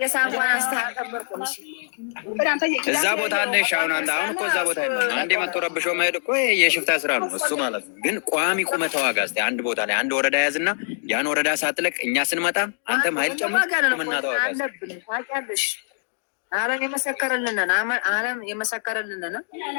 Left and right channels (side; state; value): right; silent; digital silence